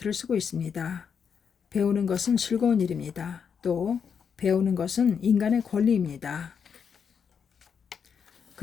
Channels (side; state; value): right; quieter; 6.9 dB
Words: 쓰고 있습니다. 배우는 것은 즐거운 일입니다. 또 배우는 것은 인간의 권리입니다.